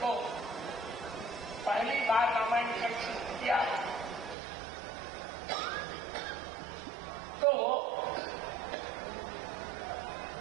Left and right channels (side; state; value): left; drops out; at 4.4 s